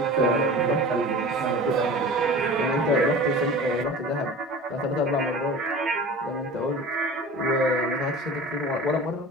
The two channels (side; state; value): both; normal; correlation 0.37